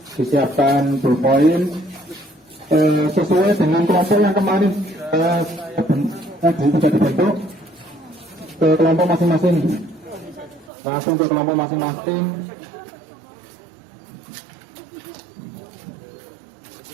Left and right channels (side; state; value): left; drops out; at 10.7 s